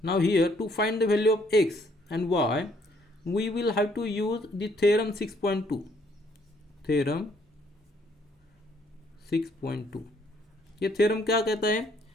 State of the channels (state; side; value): normal; both; correlation 0.66